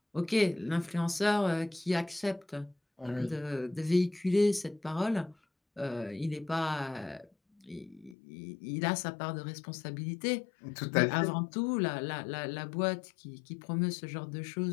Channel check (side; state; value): right; drops out; at 8.2 s